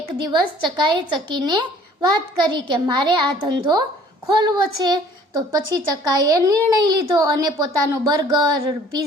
દિવસ ચકાએ ચકીને વાત કરી કે મારે આ ધંધો ખોલવો છે. તો પછી ચકાએ નિર્ણય લીધો અને પોતાનો બર્ગર,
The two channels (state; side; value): normal; both; correlation 0.54